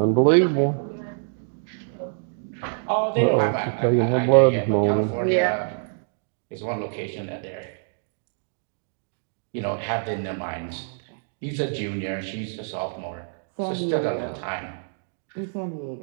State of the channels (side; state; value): left; silent; digital silence